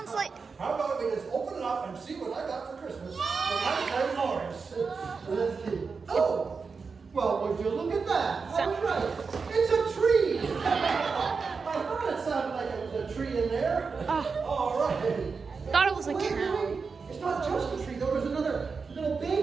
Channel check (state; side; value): quieter; left; 5.0 dB